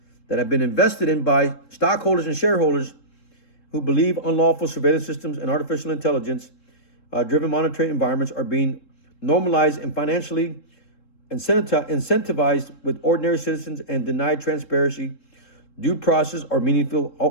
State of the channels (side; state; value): right; late; 3.7 ms